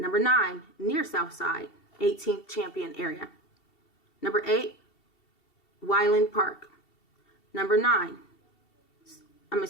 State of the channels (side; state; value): right; late; 2.7 ms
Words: 9, near South Side, 18th Champion area. Number 8, Wyland Park. Number